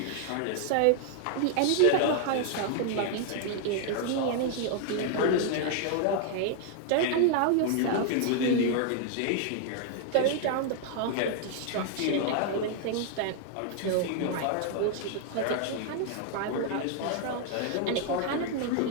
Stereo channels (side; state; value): both; different; correlation 0.00